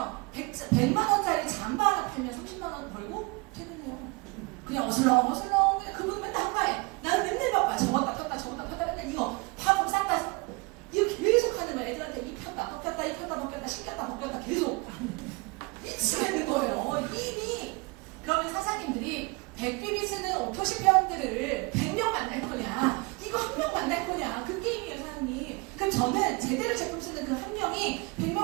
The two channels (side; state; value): left; quieter; 27.2 dB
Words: 100만 원짜리 잠바 하나 팔면 30만 원 벌고 퇴근해요. 그냥 어슬렁어슬렁 그분 맨날 한가해. 나는 맨날 바빠. 저거다 폈다 저거다 폈다 맨날 이거 파품 싹다 이거 계속 하는 거야. 애들한테 이 폈다 벗겼다 이 폈다 벗겼다 신겼다 벗겼다 계속 미치겠는 거예요. 이미. 그러면 사장님들이 100비비 쓰는 오토시 회원들을 100명 만날 거냐, 이거 한 명 만날 거냐, 그 게임이에요, 사장님. 그럼 저는 제대로 제품 쓰는 그 한 명이